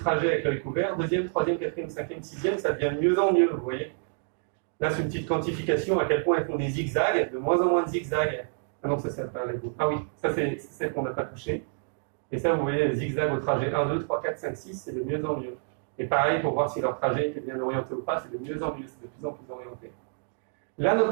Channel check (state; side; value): silent; left; digital silence